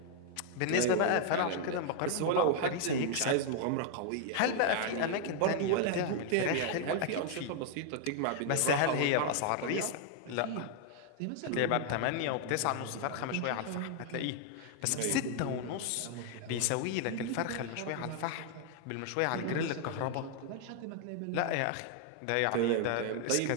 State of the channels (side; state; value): both; different; correlation 0.00